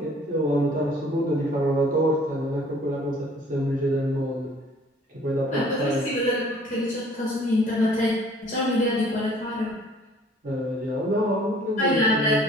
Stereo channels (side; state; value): both; normal; correlation 0.55